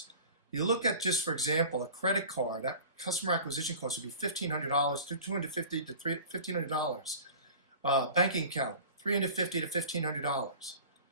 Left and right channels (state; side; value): inverted; both; correlation -0.40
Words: you look at, just for example, a credit card, that customer acquisition cost would be $1,500, $250 to $1,500. Banking account, $350 to